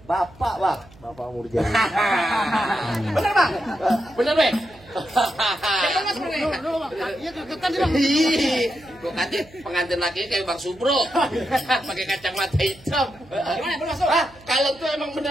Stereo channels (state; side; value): noise; right; hum, 25 dB below the sound